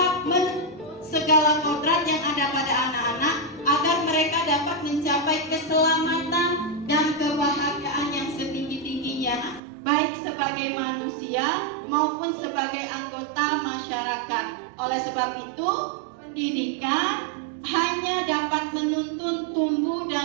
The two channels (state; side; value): drops out; left; at 9.6 s